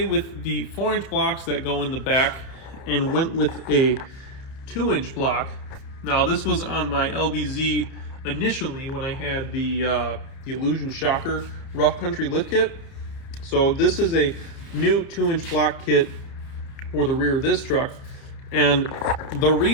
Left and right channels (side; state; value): right; late; 30 ms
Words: with the 4-inch blocks that go in the back and went with a 2-inch block. Now, this was on my LBZ initially when I had the Illusion Shocker Rough Country lift kit. So this is a new 2-inch block kit for the rear of this truck. And the